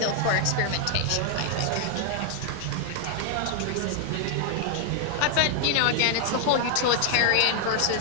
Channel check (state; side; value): different; both; correlation 0.00